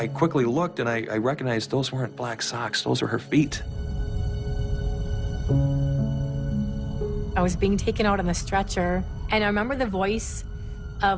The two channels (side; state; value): both; identical; correlation 1.00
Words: quickly looked, and I recognized those weren't black socks. Those were her feet. I was being taken out on the stretcher, and I remember the voice